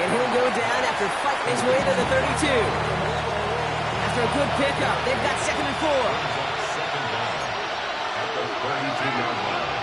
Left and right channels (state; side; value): identical; both; correlation 1.00